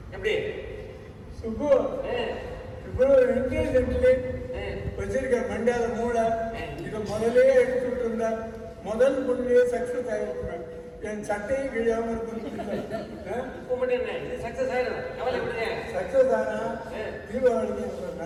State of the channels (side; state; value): both; identical; correlation 1.00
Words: எப்படி சுப்பு இவ்வளவு இன்டெலிஜென்ட்லி வச்சிருக்க மண்டால மூளை இதை முதலே எடுத்துட்டு இருந்தா முதல் பொண்ணுலயே சக்சஸ் ஆகிருக்கிறேன். என் சட்டையும் கிழியாம இது சக்சஸ் ஆயிடும், கவலை விடுங்க. சக்சஸ் ஆனா தீபாவளிக்கு